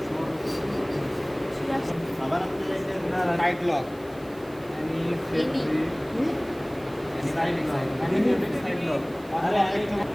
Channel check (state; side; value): noise; right; hiss, 24 dB below the sound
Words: আবার আপনি চাইছেন না টাইট লক। আরে আরেকটা